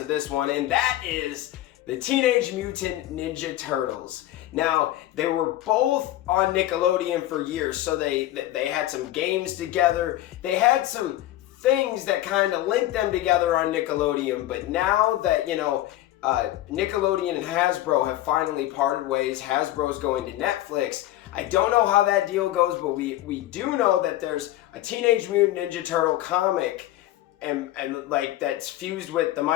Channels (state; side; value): quieter; right; 14.7 dB